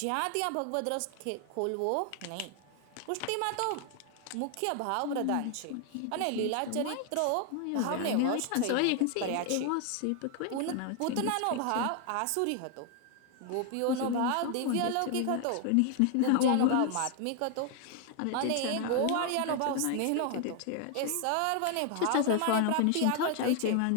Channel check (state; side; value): different; both; correlation 0.00